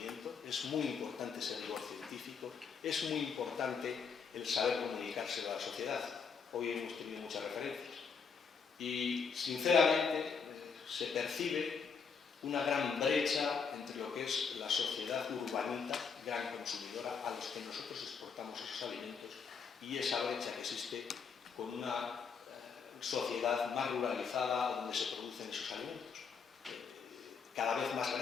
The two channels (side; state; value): right; quieter; 5.9 dB